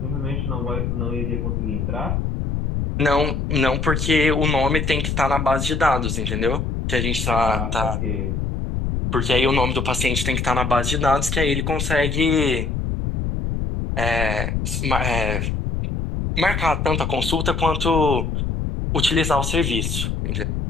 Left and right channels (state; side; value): noise; left; rumble, 1 dB below the sound